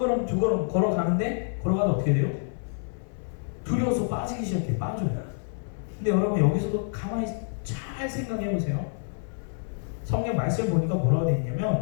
두 걸음 걸어가는데 걸어가다 어떻게 돼요? 두려워서 빠지기 시작해. 빠져요. 근데 여러분 여기서도 가만히 잘 생각해 보세요. 성경 말씀 보니까 뭐라고 되어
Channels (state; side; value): silent; right; 60 dB below the other